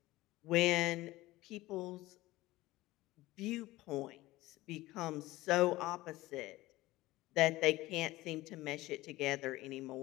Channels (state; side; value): quieter; right; 18.2 dB